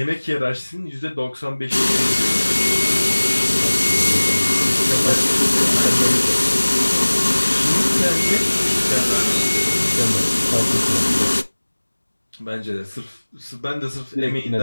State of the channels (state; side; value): inverted; both; correlation -1.00